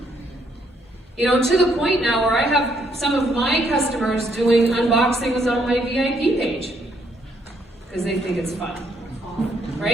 You know, to the point now where I have some of my customers doing unboxings on my VIP page, because they think it's fun,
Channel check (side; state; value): both; normal; correlation 0.71